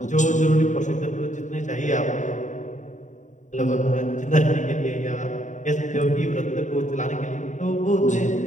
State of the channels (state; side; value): late; right; 0.36 ms